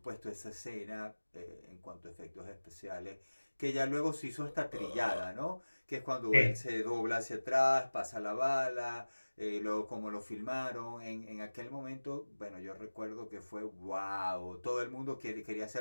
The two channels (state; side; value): inverted; both; correlation -1.00